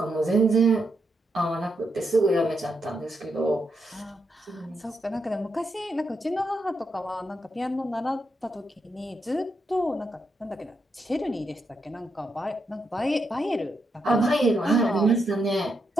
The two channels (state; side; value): normal; both; correlation 0.82